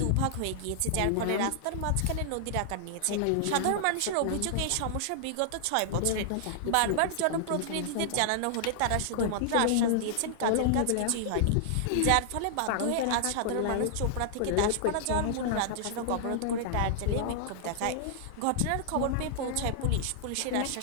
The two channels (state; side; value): different; both; correlation -0.01